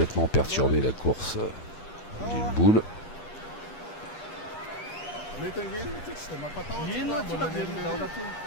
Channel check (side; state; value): right; late; 9.2 ms